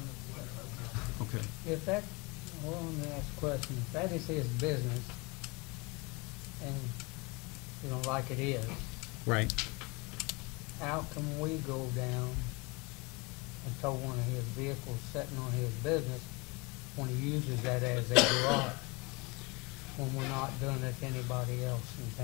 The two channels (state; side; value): quieter; right; 27.3 dB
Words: the Okay. If that, well, let me ask a question. If that is his business, and, like it is, Right. how can we go down and tow one of his vehicles sitting on his business when he uses that as a garage, when we're not doing it to anybody else